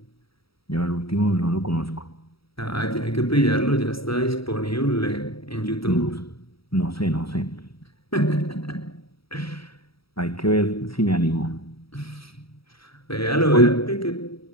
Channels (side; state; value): right; late; 0.75 ms